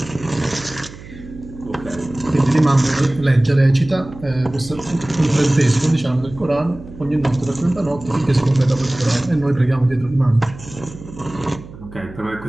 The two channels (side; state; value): right; noise; hum, 17 dB below the sound